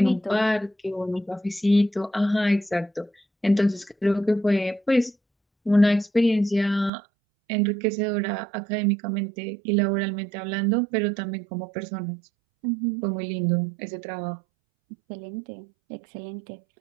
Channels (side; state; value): left; drops out; at 6.9 s